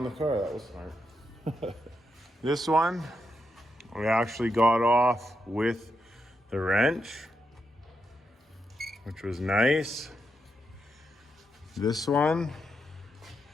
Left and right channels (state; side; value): normal; both; correlation 0.83